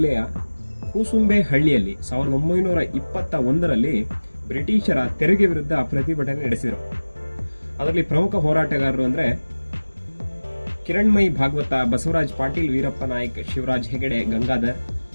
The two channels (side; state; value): both; inverted; correlation -1.00